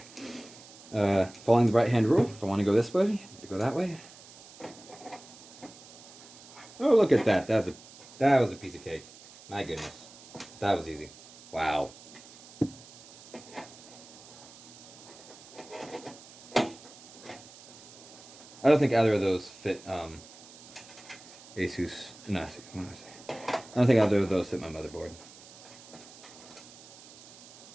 Following the right-hand rule, if I want to go this way, I need to go that way. Oh, look at that. That was a piece of cake. My goodness. That was easy. Wow. I don't think either of those fit Asus. No, what am I saying? I don't think either of those fit my motherboard.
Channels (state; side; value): noise; right; hiss, 20 dB below the sound